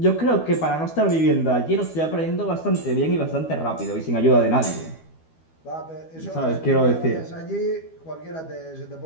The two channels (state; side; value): late; right; 12 ms